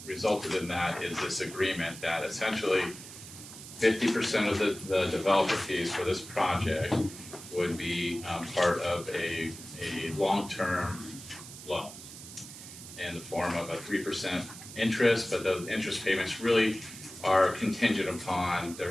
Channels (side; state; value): right; noise; hiss, 14 dB below the sound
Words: resulted in that is this agreement that essentially 50% of the developer fees for this project would be part of a long-term loan in the form of a 3% interest, but those interest payments really are contingent upon